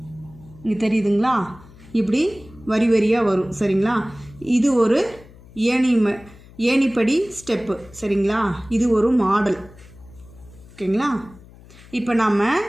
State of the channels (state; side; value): noise; left; hum, 22 dB below the sound